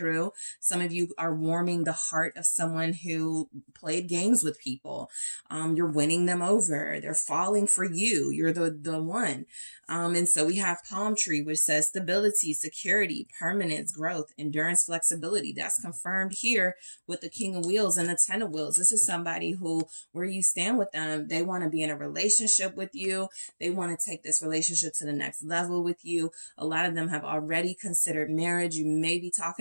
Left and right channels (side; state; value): both; inverted; correlation -1.00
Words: Some of you are warming the heart of someone who played games with people. You're winning them over. They're falling for you. You're the one. And so we have palm tree, which says stability, security, permanence, growth, endurance, flexibility. That's confirmed here with the King of Wheels and the Ten of Wheels. This is somebody who, where you stand with them, they want to be in a relationship with you. They want to take this relationship to the next level with you. A lot of them have already considered marriage. You may be